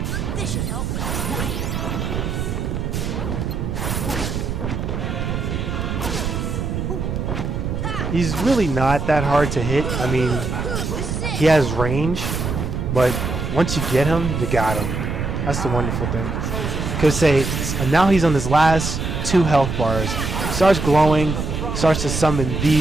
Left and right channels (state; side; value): noise; right; rumble, 3 dB below the sound